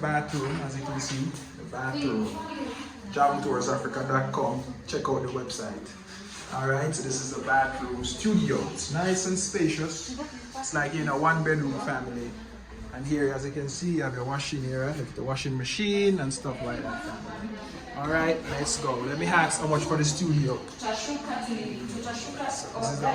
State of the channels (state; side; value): identical; both; correlation 1.00